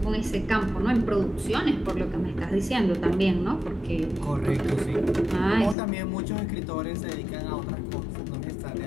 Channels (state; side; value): drops out; right; at 5.8 s